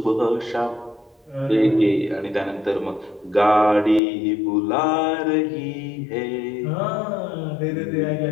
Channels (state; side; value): drops out; right; at 4.0 s